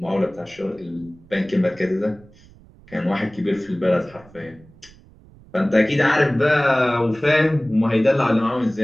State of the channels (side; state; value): right; noise; rumble, 25 dB below the sound